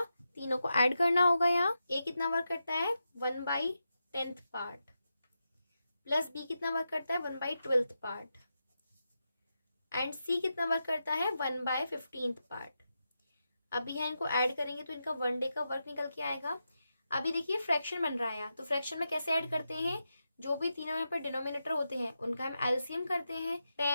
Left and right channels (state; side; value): inverted; both; correlation -0.88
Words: तीनों को ऐड करना होगा। यहाँ A कितना वर्क करता है, 1/10 पार्ट, प्लस B कितना वर्क करता है, 1/12 पार्ट, एंड C कितना वर्क करता है, 1/15 पार्ट। अभी यहाँ इनको ऐड करेंगे तो इनका 1 डे का वर्क निकल के आएगा। अभी देखिए फ्रैक्शन बन रहा है, तो फ्रैक्शन में कैसे ऐड करते हैं, जो भी तीनों यहाँ पर डिनोमिनेटर होते हैं उनका हम एलसीएम करते हैं।